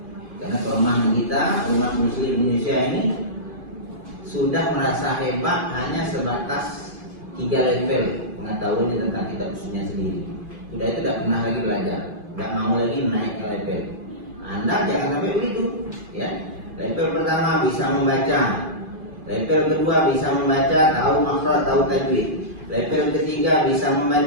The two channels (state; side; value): late; left; 2.5 ms